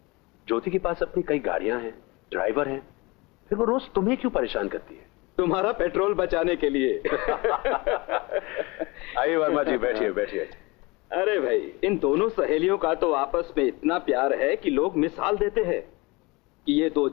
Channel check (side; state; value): right; quieter; 24.7 dB